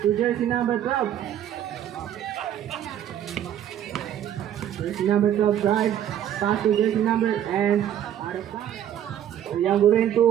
to jersey number 12. Jersey number 12 drive. Pass to jersey number and out of time. Uyang gurin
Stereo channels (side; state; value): left; quieter; 10.6 dB